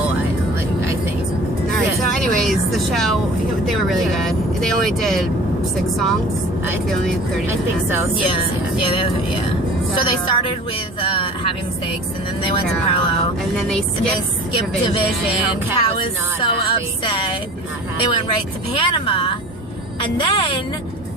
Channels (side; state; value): both; normal; correlation 0.42